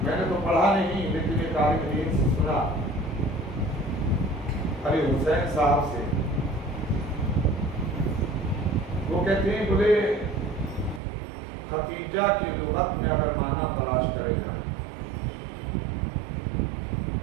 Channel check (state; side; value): drops out; left; at 11.0 s